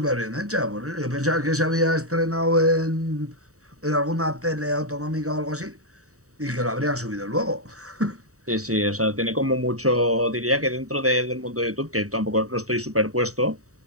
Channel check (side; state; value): left; late; 0.65 ms